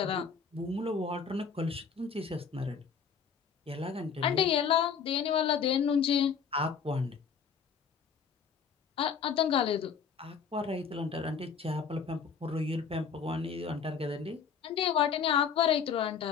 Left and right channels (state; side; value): quieter; right; 6.4 dB